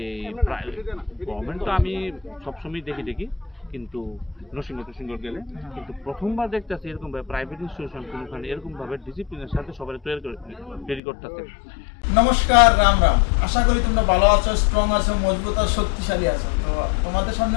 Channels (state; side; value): drops out; right; at 11.0 s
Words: গভর্নমেন্ট তো আমি সবসময় দেখি কিন্তু নরসিংহ গেলে কিন্তু প্রথমবার দেখতেছি এরকমভাবে প্রাইভেট ইনস্টিটিউশন কোনোখানে এরকমভাবে ডিসিপ্লিনের সাথে সবাই তৈরি করতেছে। নমস্কার, রাম রাম। আশা করি তোমরা ভালো আছো, স্ট্রং আছো, মজবুত আর শক্তিশালী আছো। তো তোমাদের সামনে